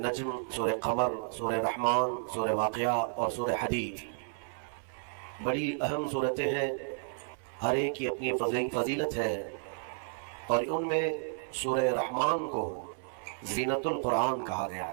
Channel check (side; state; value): left; silent; 56 dB below the other